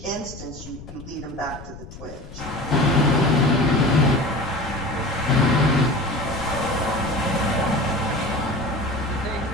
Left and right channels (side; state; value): left; noise; rumble, 15 dB below the sound